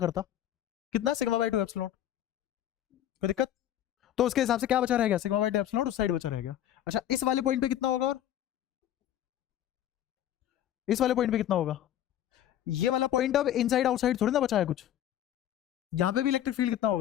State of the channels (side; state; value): right; quieter; 11.6 dB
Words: कितना सिग्मा बाय 2 एप्सिलॉन नॉट। कोई दिक्कत, तो उसके हिसाब से क्या बचा रहेगा, सिग्मा बाय 2 एप्सिलॉन नॉट उस साइड बचा रहेगा। अच्छा इस वाले पॉइंट पे कितना होगा, और इस वाले पॉइंट पे कितना होगा, ये वाला पॉइंट अब इनसाइड आउटसाइड थोड़ी ना बचा है कुछ, यहां पे भी इलेक्ट्रिक फील्ड कितना